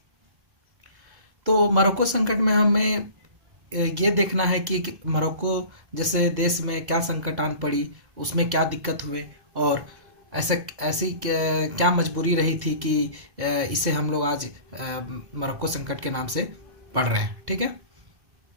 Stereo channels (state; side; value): late; left; 1.1 ms